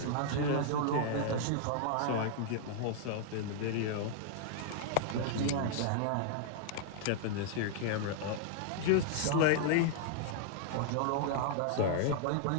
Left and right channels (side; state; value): both; different; correlation -0.01